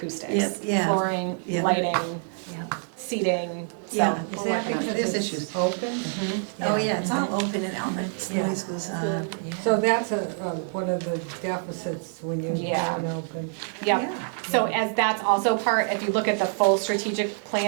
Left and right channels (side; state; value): left; silent; 61 dB below the other